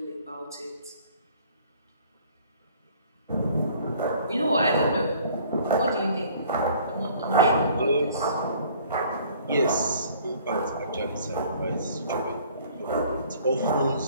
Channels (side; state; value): both; inverted; correlation -0.55